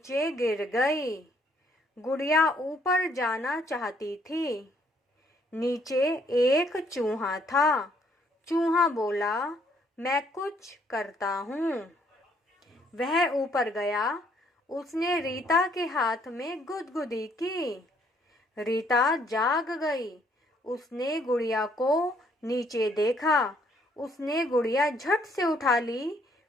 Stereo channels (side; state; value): both; normal; correlation 0.67